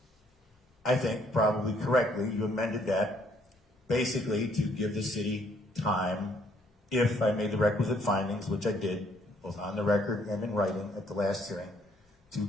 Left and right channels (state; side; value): normal; both; correlation 0.67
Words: I think, probably correctly, you amended that basically to give the city time, if I made the requisite findings, which I did, both on the record and in writing at the last hearing, to